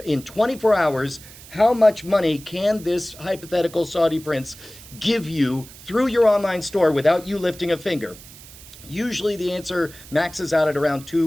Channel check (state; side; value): noise; right; hiss, 19 dB below the sound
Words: in 24 hours, how much money can this hypothetical Saudi prince give you through your online store without you lifting a finger? Usually the answer maxes out at around